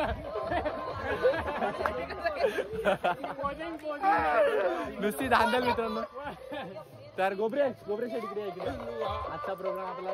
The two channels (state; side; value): identical; both; correlation 1.00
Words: नुसती धांदल मित्रांनो. तर गोबरे शेट इकडे आजचा प्रोग्राम